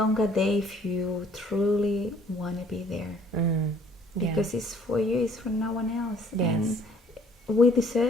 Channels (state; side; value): normal; both; correlation 0.58